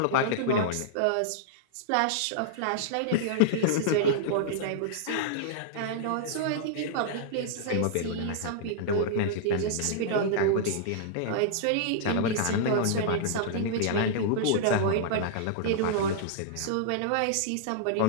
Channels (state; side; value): different; both; correlation -0.02